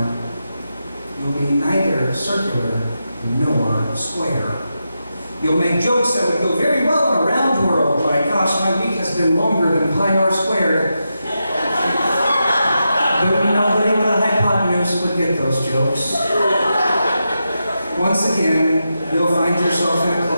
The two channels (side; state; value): both; inverted; correlation -0.88